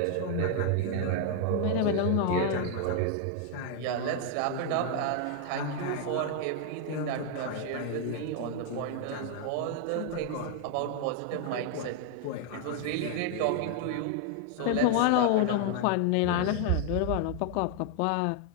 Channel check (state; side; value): different; both; correlation 0.00